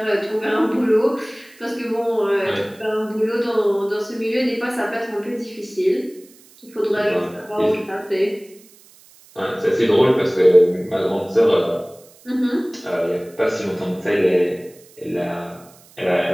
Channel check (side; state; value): right; noise; hiss, 26 dB below the sound